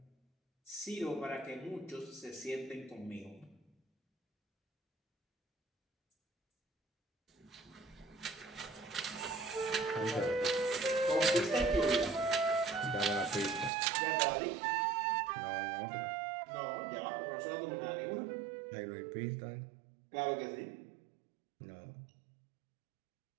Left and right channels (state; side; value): drops out; left; at 13.7 s